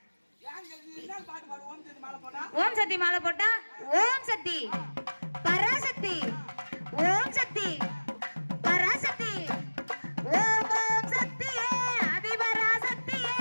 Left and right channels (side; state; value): both; inverted; correlation -1.00